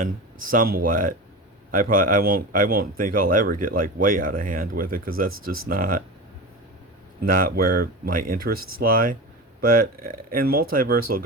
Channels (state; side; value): normal; both; correlation 0.27